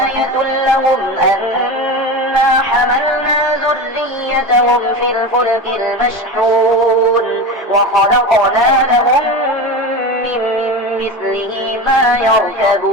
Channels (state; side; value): normal; both; correlation 0.26